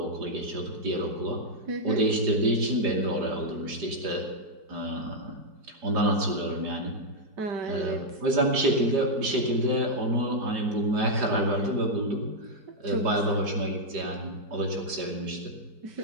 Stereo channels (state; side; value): late; left; 4.9 ms